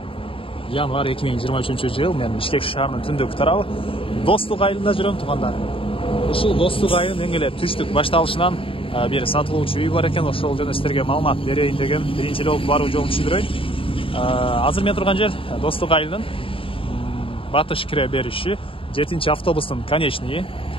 январь 2023 жыл. Мен Бишкек шаарынын түндүк тарабы Достук айылында жүрөм туғандар. Ушул Достук айылынын эң эле түштүк башталышынан бери сатылуучу үй бар экен. Ошол жөнүндө сиздерге маалымат берейин деген биринчи эле болуп баруу жолун түшүндүрөйүн. Азыр мен турган жер Достук айылынын батыш кире бериши 7-чи автобустун конечный.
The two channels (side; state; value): right; late; 0.26 ms